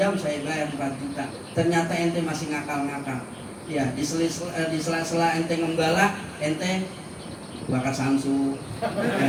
saya bayar 4 juta. Ternyata ente masih ngakal-ngakal. Ya, di sela-sela ente ngembala, ente bakar samsu.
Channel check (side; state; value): both; identical; correlation 1.00